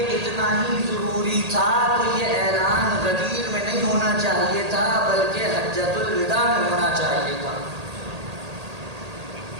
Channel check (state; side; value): late; left; 1.8 ms